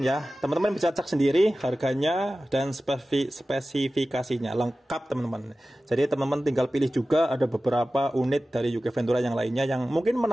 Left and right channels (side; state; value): both; normal; correlation 0.96